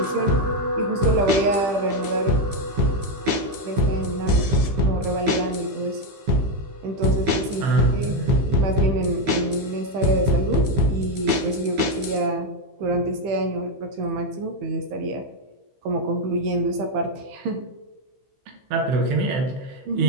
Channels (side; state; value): left; late; 15 ms